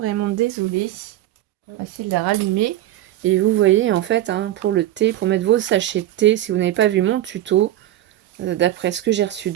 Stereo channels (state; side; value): quieter; left; 13.7 dB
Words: désolée. Facile à rallumer. Et vous voyez, en fait, hein, pour le thé, pour mettre vos sachets de thé, si vous n'avez pas vu mon tuto, d'après ce que j'ai reçu